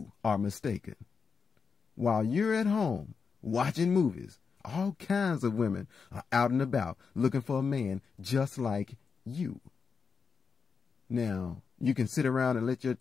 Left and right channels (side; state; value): right; quieter; 5.5 dB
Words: are mistaken. While you're at home watching movies, all kinds of women are out and about looking for a man just like you. Now, you can sit around and let your